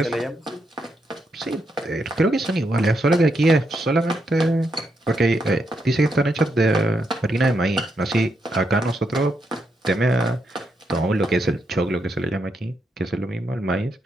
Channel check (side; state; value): both; normal; correlation 0.81